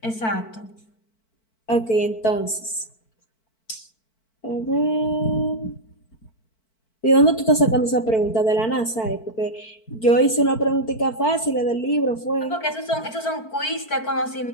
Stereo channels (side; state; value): right; late; 4.5 ms